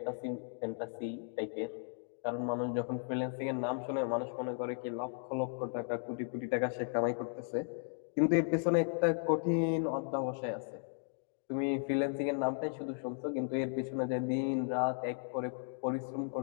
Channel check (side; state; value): right; silent; digital silence